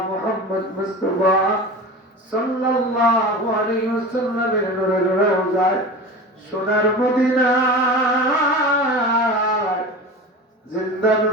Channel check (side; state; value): both; normal; correlation 0.31